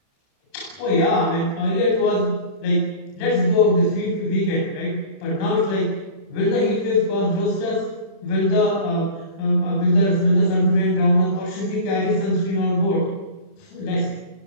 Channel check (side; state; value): right; late; 31 ms